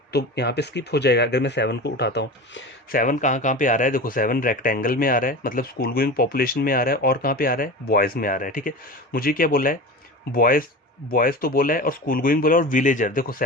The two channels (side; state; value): both; normal; correlation 0.30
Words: तो यहाँ पे स्किप हो जाएगा अगर मैं 7 को उठाता हूँ। 7 कहाँ कहाँ पे आ रहा है, देखो 7 रेक्टेंगल में आ रहा है, मतलब स्कूल गोइंग पॉपुलेशन में आ रहा है, और कहाँ पे आ रहा है, बॉयज़ में आ रहा है, ठीक है। मुझे क्या बोला है, बॉयज़, बॉयज़ तो बोला है, और स्कूल गोइंग बोला, और विलेजर, देखो